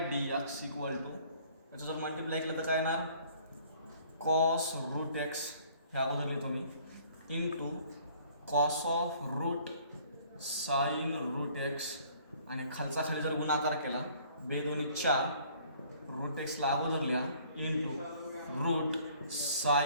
d x equal to याचं जर मल्टिप्लाय केलं तर काय येणार कॉस रूट एक्स ह्या अगोदर लिहितो मी into cos of root sine root x आणि खालचा खाली जर गुणाकार केला 2 2 4 रूट एक्सला अगोदर लिहा into root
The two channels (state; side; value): inverted; both; correlation -0.57